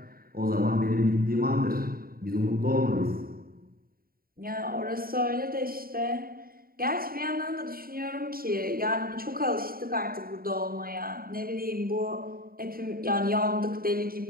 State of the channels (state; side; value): late; left; 0.43 ms